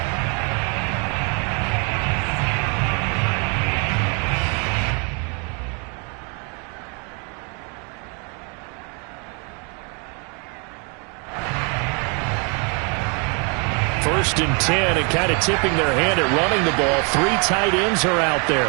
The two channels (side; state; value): left; quieter; 35.0 dB